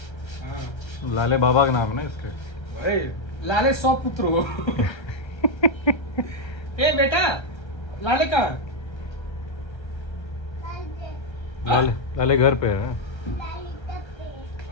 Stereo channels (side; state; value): right; late; 1.3 ms